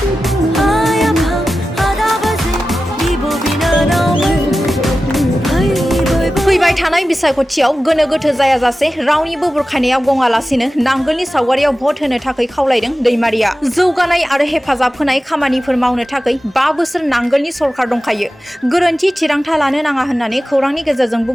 फैबाय थानाय बिसायख'थियाव गोनो गोथो जायाजासे रावनिबो बुरखायनायाव गङालासिनो नांगोलनि सावगारियाव भट होनो थाखाय खावलायदों दैमारिया। जौगानाय आरो हेफाजाब होनाय खामानिफोर मावनो थाखाय 5 बोसोर नांगोलनि सरकार दंखायो। गोरोन्थि थिरांथा लानो नाङा होननानै खौरांनि गेजेरजों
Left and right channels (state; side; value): normal; both; correlation 0.94